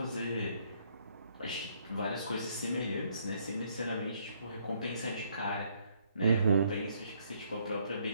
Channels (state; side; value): inverted; both; correlation -0.69